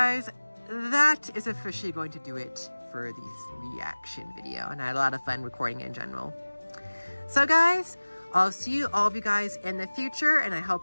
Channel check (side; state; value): both; inverted; correlation -1.00